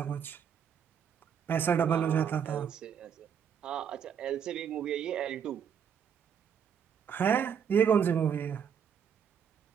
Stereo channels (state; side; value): quieter; left; 7.8 dB